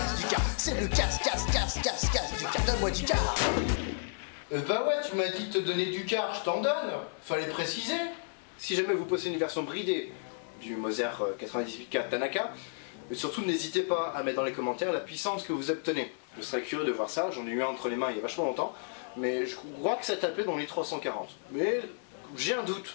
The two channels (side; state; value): right; silent; digital silence